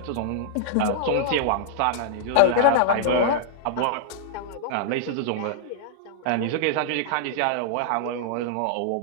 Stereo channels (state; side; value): different; both; correlation -0.01